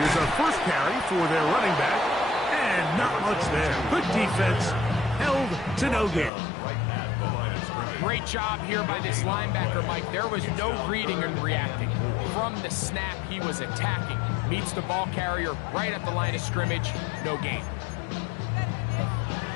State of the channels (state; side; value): drops out; right; at 6.3 s